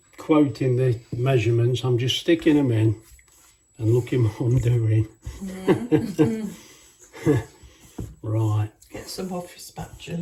quoting the measurements. I'm just sticking them in and looking what I'm doing. Right. Get some off your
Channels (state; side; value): identical; both; correlation 1.00